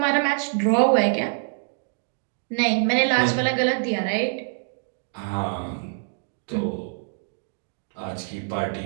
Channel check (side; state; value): left; silent; digital silence